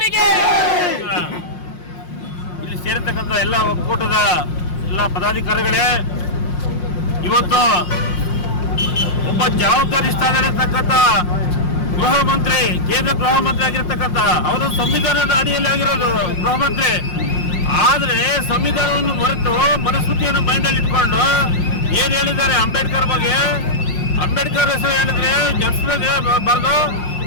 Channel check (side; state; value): right; late; 5.6 ms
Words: ಇಲ್ಲಿ ಸೇರಿರ್ತಕ್ಕಂಥ ಎಲ್ಲ ಒಕ್ಕೂಟದ ಎಲ್ಲ ಪದಾಧಿಕಾರಿಗಳೇ, ಇವತ್ತು ಒಬ್ಬ ಜವಾಬ್ದಾರಿ ಸ್ಥಾನದಲ್ಲಿರ್ತಕ್ಕಂಥ ಗೃಹ ಮಂತ್ರಿ, ಕೇಂದ್ರ ಗೃಹ ಮಂತ್ರಿ ಆಗಿರ್ತಕ್ಕಂಥ ಅವರು ಸಂವಿಧಾನದ ಅಡಿಯಲ್ಲಿ ಆಗಿರೋದು ಗೃಹ ಮಂತ್ರಿ. ಆದ್ರೆ ಸಂವಿಧಾನವನ್ನು ಮರೆತು ಮನಸ್ಮೃತಿಯನ್ನು ಮೈಂಡಲ್ಲಿ ಇಟ್ಕೊಂಡು ಏನ್ ಹೇಳಿದ್ದಾರೆ ಅಂಬೇಡ್ಕರ್ ಬಗ್ಗೆ, ಅಂಬೇಡ್ಕರ್ ಹೆಸರು ಹೇಳಿದ್ರೆ ಜಪಿಸಿದ್ರೆ ಬರೆದು